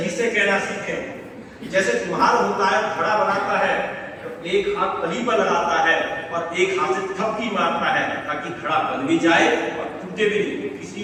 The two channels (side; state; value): both; identical; correlation 1.00